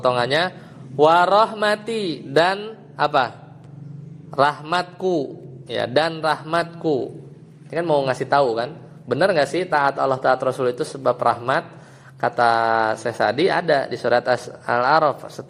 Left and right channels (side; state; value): both; identical; correlation 1.00